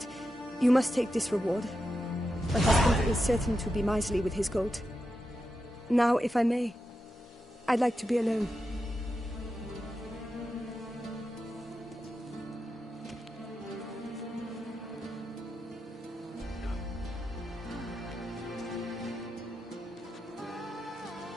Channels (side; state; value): both; normal; correlation 0.88